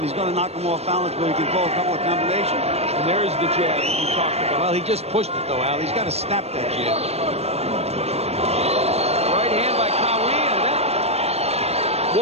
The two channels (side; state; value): left; late; 0.30 ms